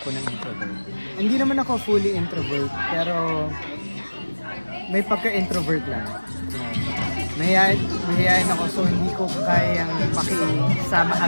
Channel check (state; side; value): inverted; both; correlation -1.00